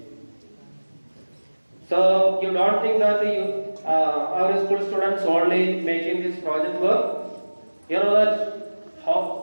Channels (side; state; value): both; inverted; correlation -1.00